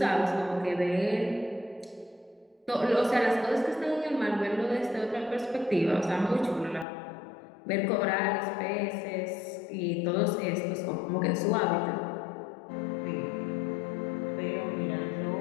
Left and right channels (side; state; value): right; drops out; at 6.9 s